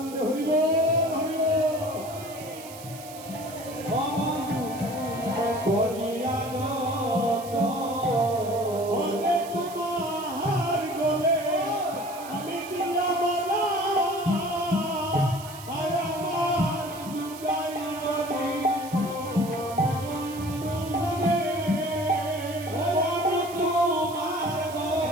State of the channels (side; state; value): right; noise; hiss, 16 dB below the sound